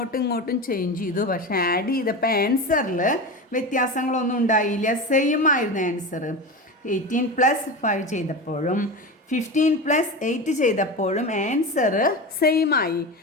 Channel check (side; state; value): both; normal; correlation 0.24